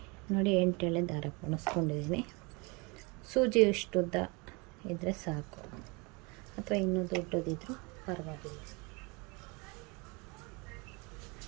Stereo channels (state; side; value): quieter; left; 28.5 dB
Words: ನೋಡಿ. 8 ಎಳೆ ದಾರ ಪೋಣಿಸ್ಕೊಂಡಿದ್ದೀನಿ. ಸೂಜಿ ಇಷ್ಟುದ್ದ ಇದ್ದರೆ ಸಾಕು, ಅಥವಾ ಇನ್ನೂ ದೊಡ್ಡದಿದ್ರೂ ಪರವಾಗಿಲ್ಲ.